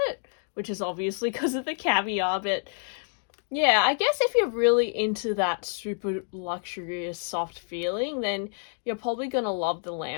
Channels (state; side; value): silent; right; 59 dB below the other